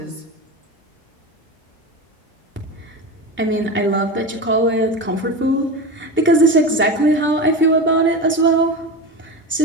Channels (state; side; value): normal; both; correlation 0.24